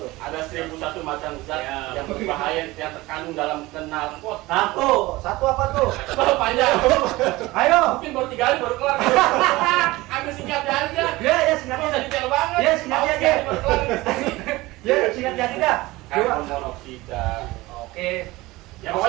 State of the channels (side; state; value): left; quieter; 20.0 dB